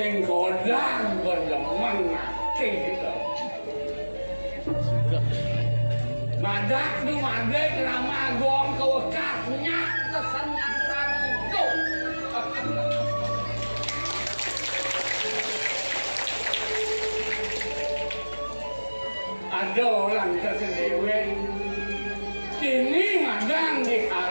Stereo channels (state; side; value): inverted; both; correlation -1.00